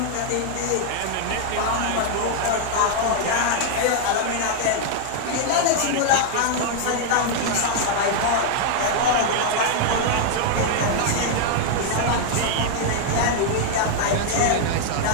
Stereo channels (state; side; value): different; both; correlation 0.00